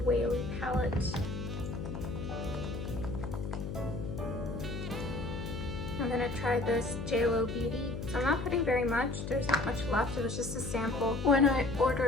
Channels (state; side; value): noise; left; hum, 6 dB below the sound